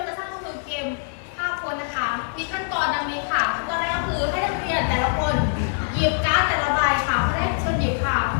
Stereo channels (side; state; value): right; silent; 63 dB below the other